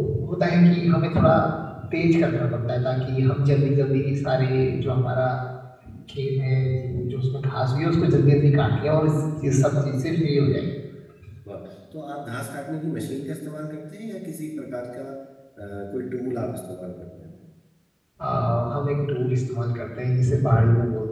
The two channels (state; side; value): identical; both; correlation 1.00